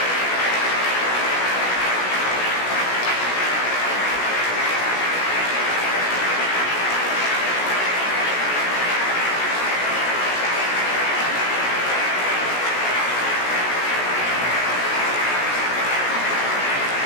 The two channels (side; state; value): right; late; 16 ms